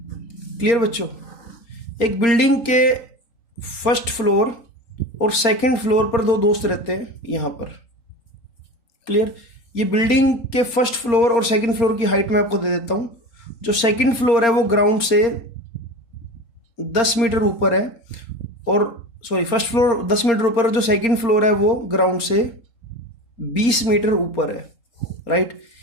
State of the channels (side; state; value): right; late; 4.3 ms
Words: क्लियर बच्चों, एक बिल्डिंग के फर्स्ट फ्लोर और सेकंड फ्लोर पर दो दोस्त रहते हैं यहां पर, क्लियर। ये बिल्डिंग के फर्स्ट फ्लोर और सेकंड फ्लोर की हाइट मैं आपको दे देता हूं। जो सेकंड फ्लोर है वो ग्राउंड से 10 मीटर ऊपर है, और सॉरी फर्स्ट फ्लोर 10 मीटर ऊपर, और जो सेकंड फ्लोर है वो ग्राउंड से 20 मीटर ऊपर है। राइट,